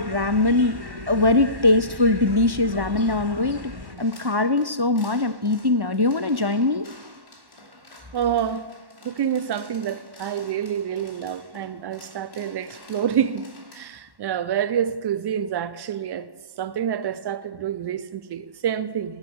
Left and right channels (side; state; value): left; late; 1.1 ms